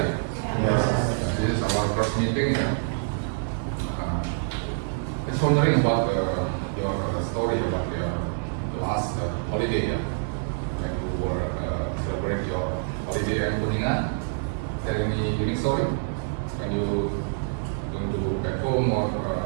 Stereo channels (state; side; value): silent; left; digital silence